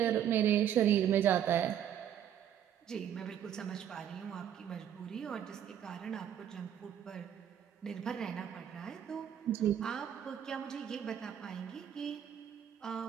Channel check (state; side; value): quieter; left; 9.7 dB